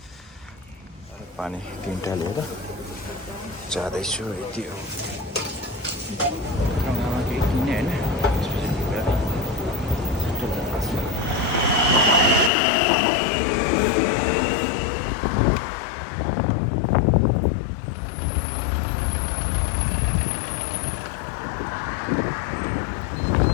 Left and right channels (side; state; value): right; drops out; at 12.5 s